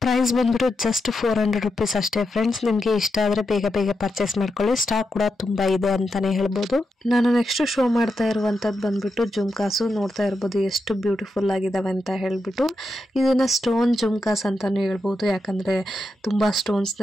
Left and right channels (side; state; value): both; normal; correlation 0.86